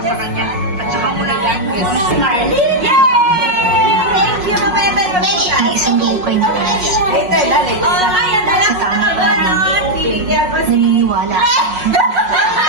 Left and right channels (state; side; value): late; left; 5.5 ms